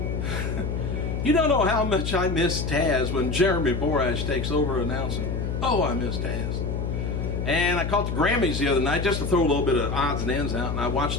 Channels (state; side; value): noise; left; hum, 2 dB below the sound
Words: You don't know how much I miss Taz when Jeremy Borash takes over announcing. Oh, I miss Taz. And I caught the Grammys the other night just to throw a little bit of odds and ends out, and I watched